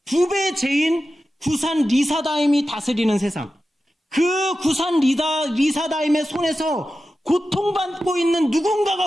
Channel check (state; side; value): normal; both; correlation 0.93